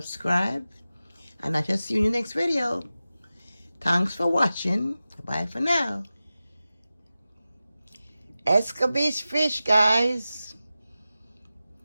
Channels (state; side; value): inverted; both; correlation -0.95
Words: And I shall see you in the next video. Thanks for watching. Bye for now. Escabeche fish, guys.